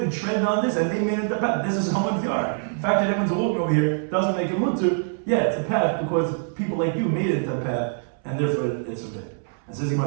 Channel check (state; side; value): silent; left; 60 dB below the other